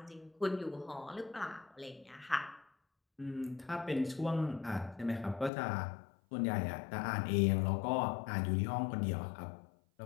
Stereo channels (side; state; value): right; drops out; at 5.5 s